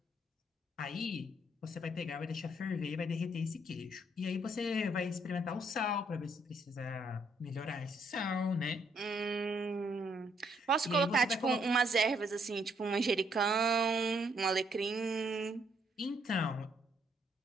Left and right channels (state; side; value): normal; both; correlation 0.71